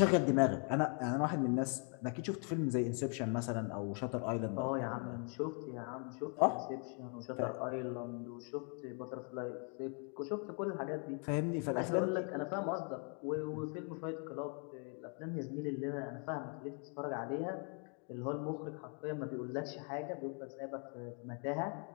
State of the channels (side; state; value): right; quieter; 39.8 dB